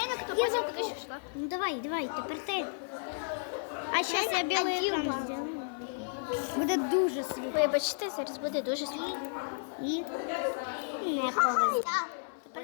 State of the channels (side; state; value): right; silent; 56 dB below the other